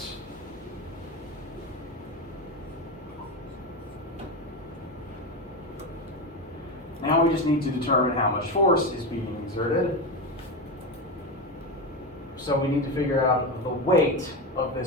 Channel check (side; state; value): both; normal; correlation 0.18